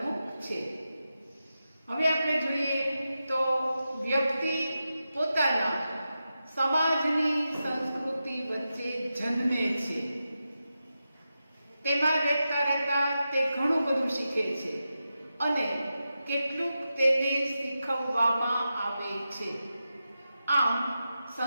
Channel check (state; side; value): inverted; both; correlation -0.90